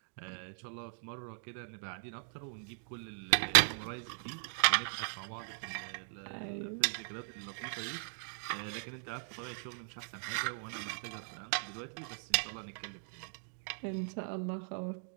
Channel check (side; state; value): left; silent; 52 dB below the other